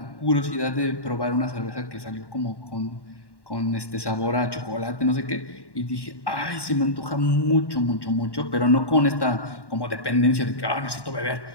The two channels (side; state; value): right; late; 1.1 ms